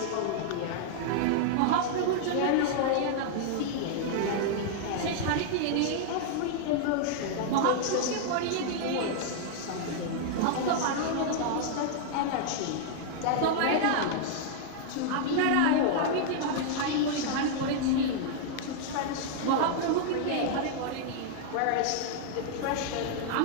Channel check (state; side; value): different; both; correlation -0.01